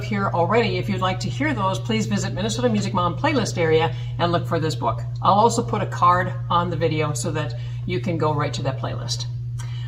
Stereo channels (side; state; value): both; identical; correlation 1.00